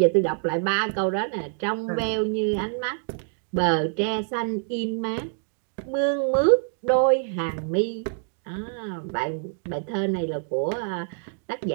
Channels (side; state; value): left; silent; 61 dB below the other